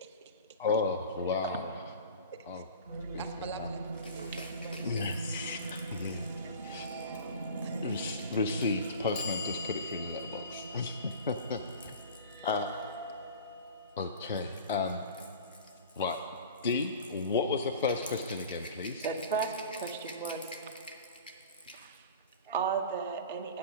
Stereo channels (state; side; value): inverted; both; correlation -0.38